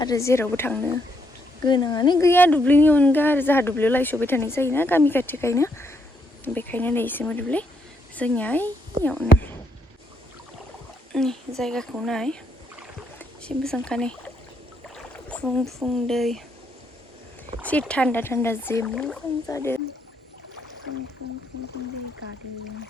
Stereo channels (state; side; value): normal; both; correlation 0.75